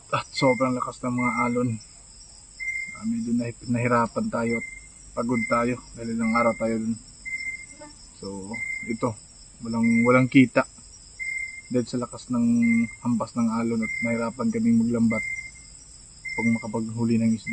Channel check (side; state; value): both; identical; correlation 1.00